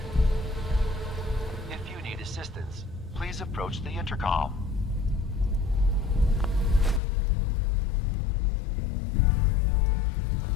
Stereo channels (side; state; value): right; drops out; at 7.0 s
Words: If you need assistance, please approach the intercom.